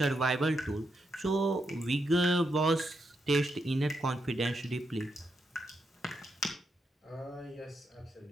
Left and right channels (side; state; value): both; normal; correlation 0.82